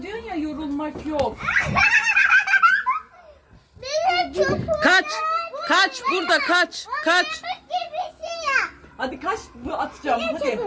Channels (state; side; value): identical; both; correlation 1.00